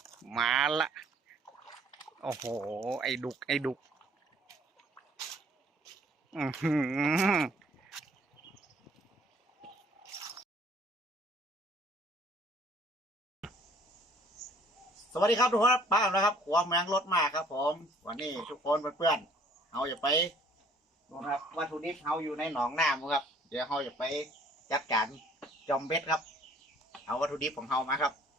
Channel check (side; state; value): both; normal; correlation 0.57